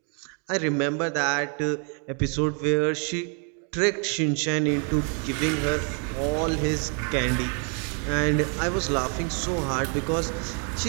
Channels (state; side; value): quieter; left; 39.6 dB